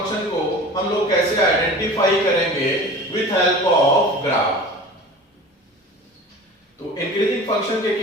को हम लोग कैसे आइडेंटिफाई करेंगे विथ हेल्प ऑफ ग्राफ। तो इंक्रीजिंग फंक्शन के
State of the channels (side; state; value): both; normal; correlation 0.39